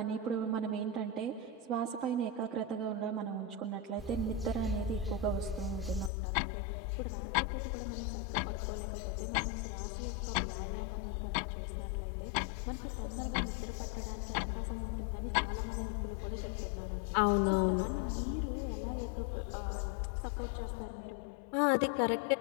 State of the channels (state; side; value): drops out; right; at 6.1 s